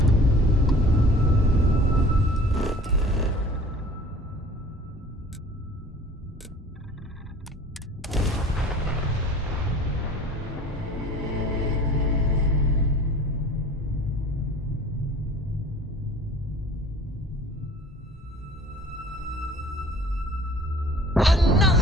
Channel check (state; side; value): normal; both; correlation 0.46